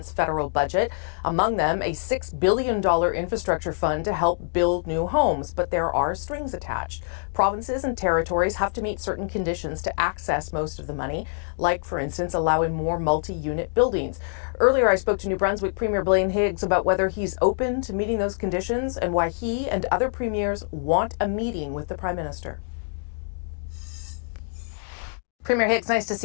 federal budget. Among them, a $6 billion infrastructure fund to help build new homes. But there are strings attached. Provinces and territories have to meet certain conditions to access most of the money, like, for instance, allowing more multi-unit buildings. Earlier, I spoke to New Brunswick Premier Blaine Higgs about whether he's open to meeting those conditions and why he and other premiers want a meeting with the Prime Minister. Premier Higgs, nice to see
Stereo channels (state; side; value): silent; right; digital silence